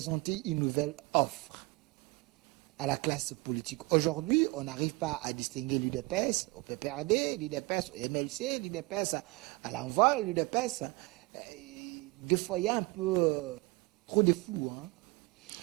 une nouvelle offre à la classe politique? Aujourd'hui, on n'arrive pas à distinguer l'UDPS au PPRD, l'UDPS au MLC, l'UDPS à l'envol, l'UDPS. Des fois, il y a un peu trop de flou.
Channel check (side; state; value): left; quieter; 24.8 dB